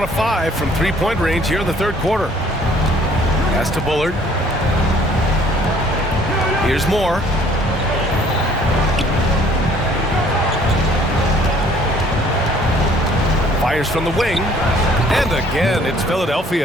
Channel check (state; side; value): normal; both; correlation 0.58